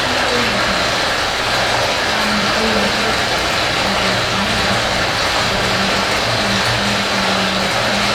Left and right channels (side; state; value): both; identical; correlation 1.00